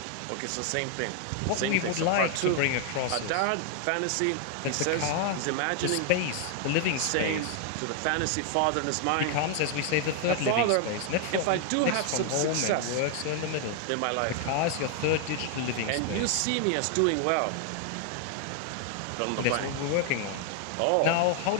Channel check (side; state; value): both; different; correlation 0.00